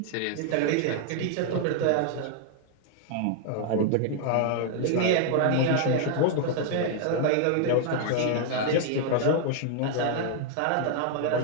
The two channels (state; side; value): different; both; correlation 0.00